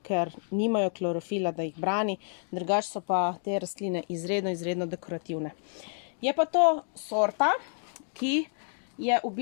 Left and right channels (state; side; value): silent; right; 58 dB below the other